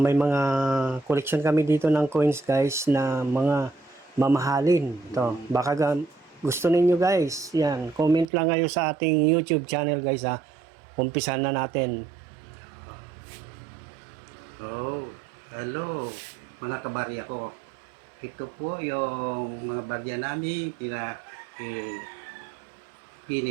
May mga collection kami dito ng coins guys na mga mamahalin. Ito, baka gusto ninyo guys. Yan, comment lang kayo sa ating YouTube channel guys ha. Umpisan na natin. Oh, hello mga kabarya ko. Ito po yung mga bagya namin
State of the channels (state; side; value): drops out; left; at 8.2 s